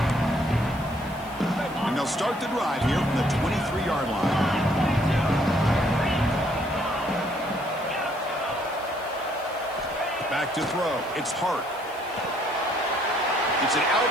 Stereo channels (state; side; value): noise; left; hiss, 22 dB below the sound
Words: And they'll start the drive here from the 23-yard line. Back to throw. It's Hart. It's an out